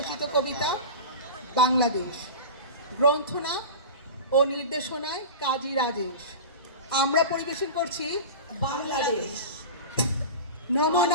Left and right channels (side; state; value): both; inverted; correlation -0.30